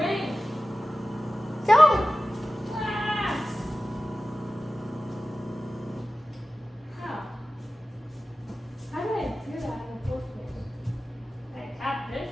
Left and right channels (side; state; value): both; normal; correlation 0.95